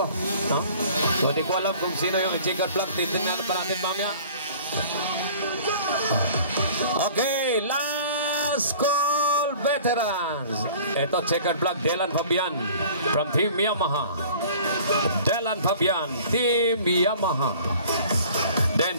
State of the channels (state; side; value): inverted; both; correlation -0.48